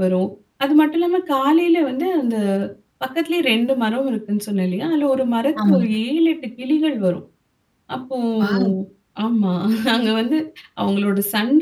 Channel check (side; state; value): both; identical; correlation 1.00